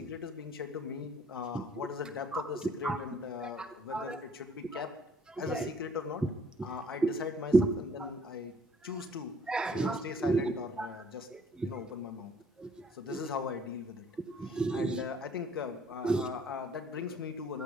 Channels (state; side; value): normal; both; correlation 0.59